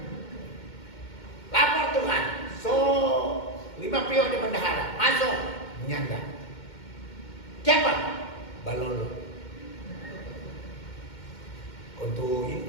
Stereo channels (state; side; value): late; right; 2.1 ms